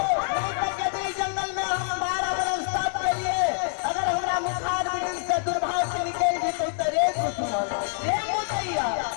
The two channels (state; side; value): silent; right; digital silence